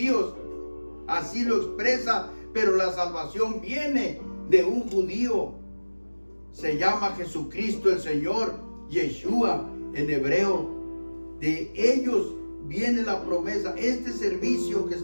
Así lo expresa, pero la salvación viene de un judío. Se llama Jesucristo el Señor, Yeshua en hebreo. De ellos viene la promesa. Este servicio que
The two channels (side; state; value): both; inverted; correlation -1.00